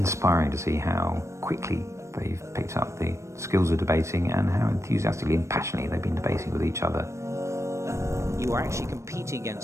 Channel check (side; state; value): left; late; 0.14 ms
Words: to see how quickly they've picked up the skills of debating and how enthusiastically and passionately they've been debating with each other. You are actually competing